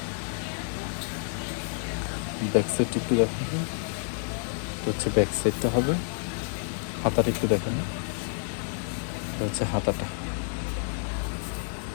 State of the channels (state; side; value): silent; right; digital silence